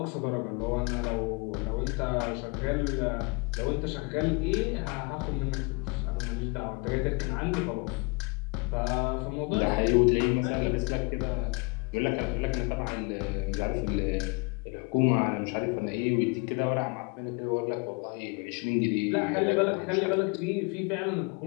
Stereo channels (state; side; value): quieter; right; 30.9 dB